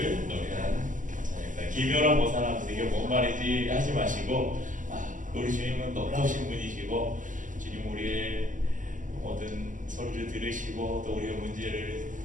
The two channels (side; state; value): left; late; 0.38 ms